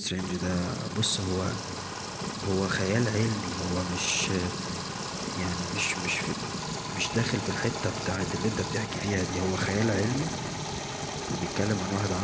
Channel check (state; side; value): identical; both; correlation 1.00